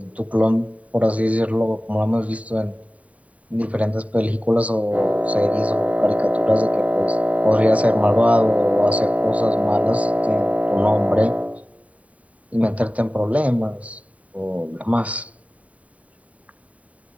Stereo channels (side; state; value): left; late; 0.068 ms